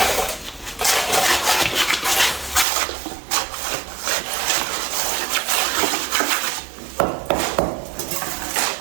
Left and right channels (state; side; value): drops out; left; at 2.7 s